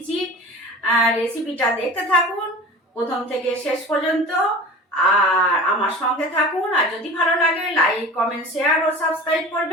রেসিপিটা দেখতে থাকুন প্রথম থেকে শেষ পর্যন্ত, আর আমার সঙ্গে থাকুন। আর যদি ভালো লাগে লাইক, কমেন্ট, শেয়ার ও সাবস্ক্রাইব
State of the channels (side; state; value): both; normal; correlation 0.37